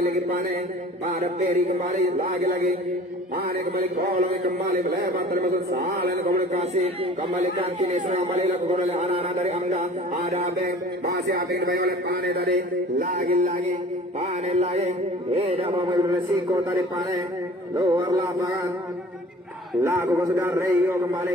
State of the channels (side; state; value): both; normal; correlation 0.45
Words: Pane pada Berry kembali, lagi Pane kembali, kolong kembali, melebar termasuk salah komunikasi, kembalikan kini serang kembali lakukan oleh anak-anak dari Angga, ada Abeng, masih Abeng dibayang oleh Pane tadi, lagi Pane lagi, tidak mau mengambil resiko tadi Pane, luar lapangan. Lakukan sudah Rio